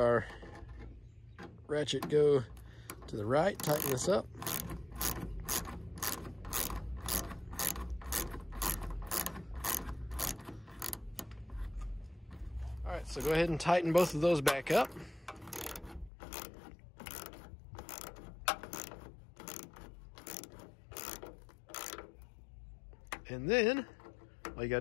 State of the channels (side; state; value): right; drops out; at 16.1 s